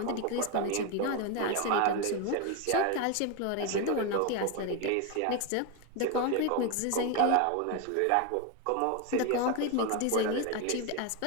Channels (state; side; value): different; both; correlation 0.02